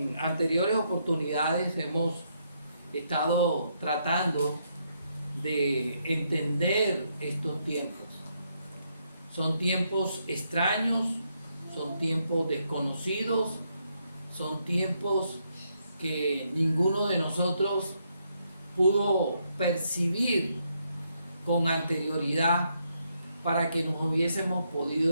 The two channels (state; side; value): inverted; both; correlation -0.76